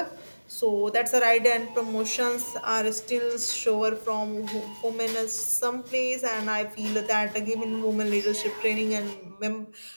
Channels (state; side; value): inverted; both; correlation -1.00